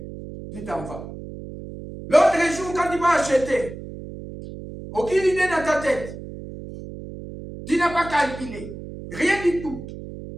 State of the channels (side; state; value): right; noise; hum, 12 dB below the sound